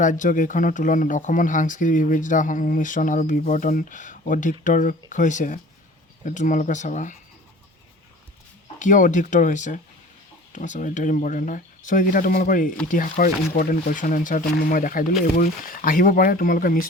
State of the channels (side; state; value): both; normal; correlation 0.44